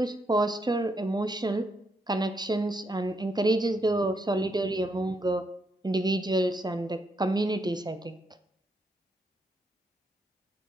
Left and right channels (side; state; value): both; normal; correlation 0.78